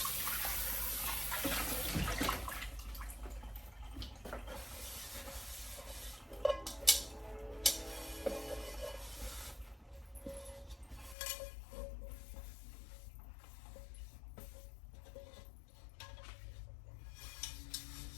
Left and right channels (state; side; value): drops out; right; at 11.2 s